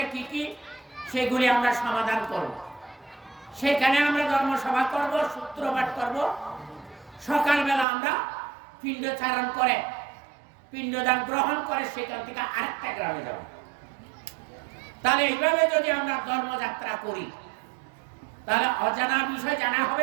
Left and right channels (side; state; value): left; drops out; at 7.9 s